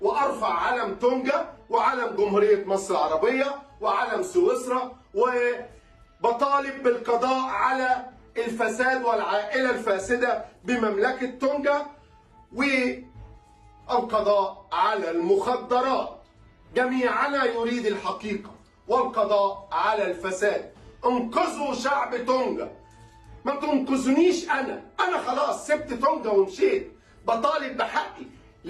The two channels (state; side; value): identical; both; correlation 1.00